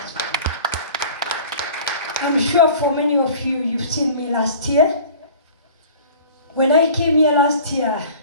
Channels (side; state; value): both; inverted; correlation -0.43